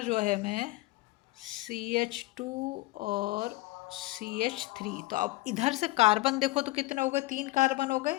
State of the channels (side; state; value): right; quieter; 19.5 dB